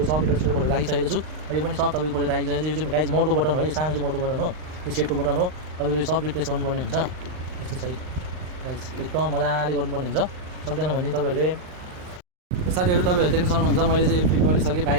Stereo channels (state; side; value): late; left; 39 ms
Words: सब मिटर सिटर खोलेर राखिसकेको छु। यो पनि सब तपाईको खोलेर राखिसकेको छु। यो चाहिँ गाइस मोडको बटन हो, यो सानो चाहिँ मोडको बटन हो, यो सेटको बटन हो। तपाईको यो सब रिप्लेस गर्नुपर्ने हुन्छ यस्तो छ गाइस, एकदम मजाले गर्नुपर्ने हुन्छ। सक्दैन भने तपाईहरुले साथीहरु तपाईहरुले देख्न सक्नुहुन्छ मैले चाहिँ यो फिट गरिसकेँ